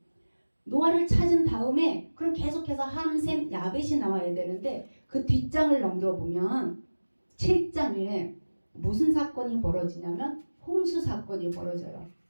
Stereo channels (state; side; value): inverted; both; correlation -1.00